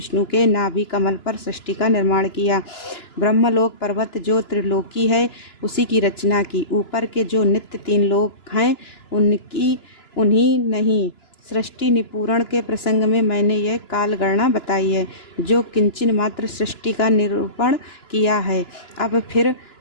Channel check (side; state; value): right; late; 2.9 ms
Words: के नाभि कमल पर सृष्टि का निर्माण किया। ब्रह्मलोक पर्वत जो त्रिलोकी है, उसी की रचना की। ऊपर के जो नित्य तीन लोक हैं, उन्हीं नहीं। सृष्टि निपूरण के प्रसंग में मैंने यह कालगणना बताई है, जो किंचन मात्र सृष्टि का निरूपण किया है। अब फिर